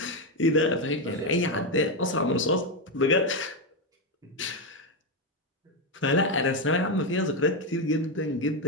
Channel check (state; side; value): normal; both; correlation 0.08